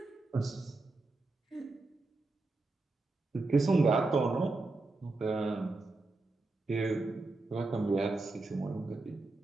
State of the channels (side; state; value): left; quieter; 3.3 dB